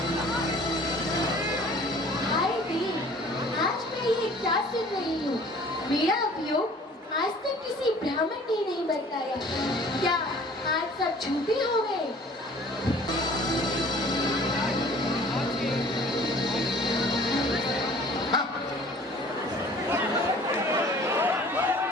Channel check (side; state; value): both; normal; correlation 0.50